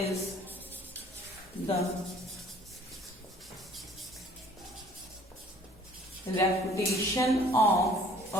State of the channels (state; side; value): normal; both; correlation 0.55